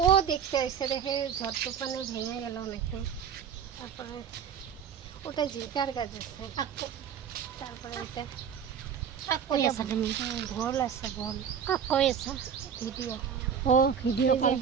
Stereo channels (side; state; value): left; quieter; 7.7 dB